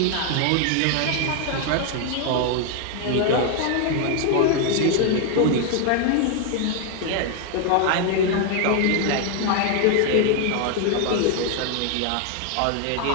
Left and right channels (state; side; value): different; both; correlation 0.00